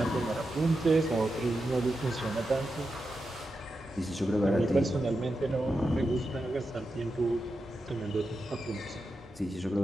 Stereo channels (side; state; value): both; normal; correlation 0.89